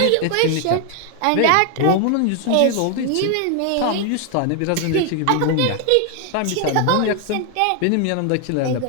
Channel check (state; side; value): different; both; correlation 0.00